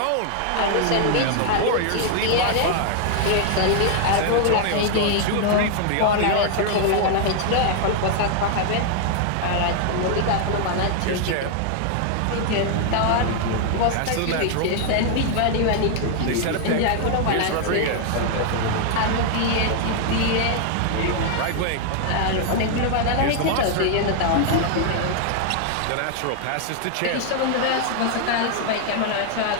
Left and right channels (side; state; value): both; different; correlation 0.00